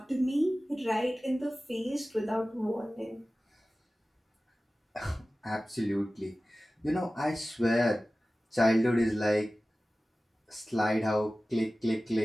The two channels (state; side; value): normal; both; correlation 0.96